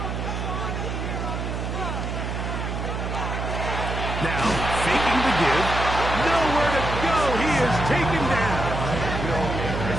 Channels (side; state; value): right; noise; hum, 3 dB below the sound